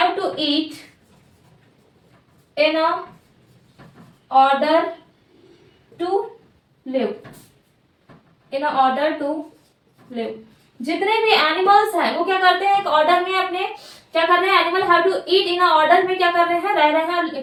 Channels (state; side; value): identical; both; correlation 1.00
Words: to eat in a order to live, in a order to live। जितने भी एनिमल्स हैं वो क्या करते हैं, एक ऑर्डर में अपने क्या कर रहे हैं, animal have to eat in a order में क्या कर रहे हैं, रह रहे हैं और